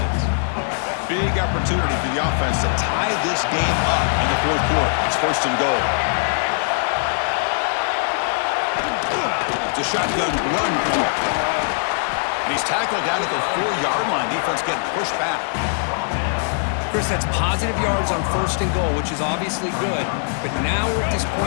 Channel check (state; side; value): silent; right; digital silence